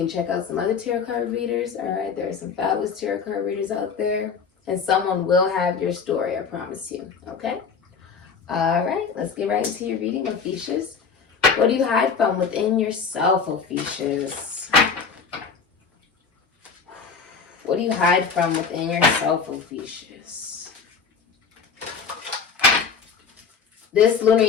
check out some other tarot card readers. All right. There are some fabulous tarot card readers out there. And someone will have your story, I promise you. Okay. All right. Let's get right into your reading, Ophiuchus. What do you hide from within yourself, Ophiuchus? What do you hide from within yourself, Ophiuchus? This lunar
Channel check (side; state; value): right; quieter; 5.7 dB